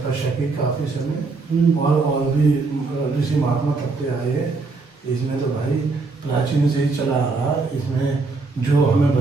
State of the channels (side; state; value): left; quieter; 3.9 dB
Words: की काफ़ी समय, और भी ऋषि महात्मा तपते आए हैं। इसमें तो भाई प्राचीन से ही चला आ रहा। इसमें जो हमें